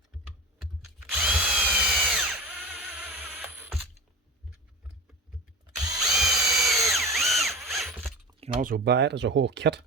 You can also buy it as a whole kit,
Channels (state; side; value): normal; both; correlation 0.30